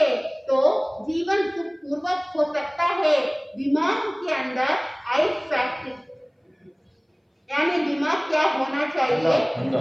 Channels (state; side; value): identical; both; correlation 1.00